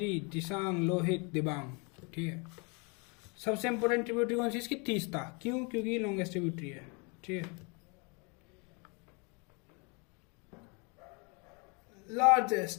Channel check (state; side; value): quieter; right; 32.1 dB